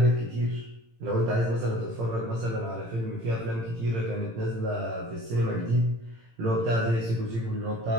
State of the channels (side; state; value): left; late; 18 ms